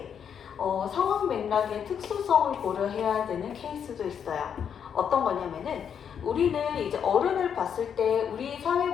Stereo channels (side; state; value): right; quieter; 7.9 dB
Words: 상황 맥락의 특수성을 고려해야 되는 케이스도 있어요. 어떤 거냐면은 우리는 이제 어른을 봤을 때 우리 사회